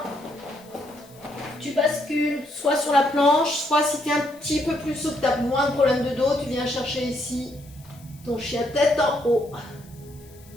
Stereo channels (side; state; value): left; noise; hiss, 25 dB below the sound